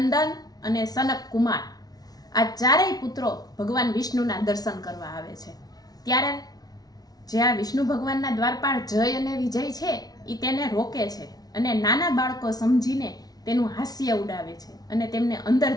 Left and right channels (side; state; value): right; late; 0.19 ms